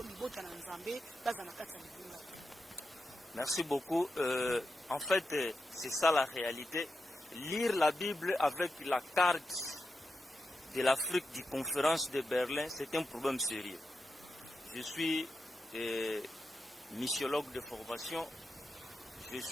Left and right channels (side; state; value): both; normal; correlation 0.89